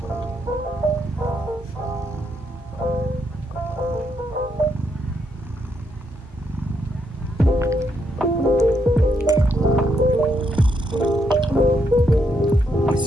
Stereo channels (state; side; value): normal; both; correlation 0.77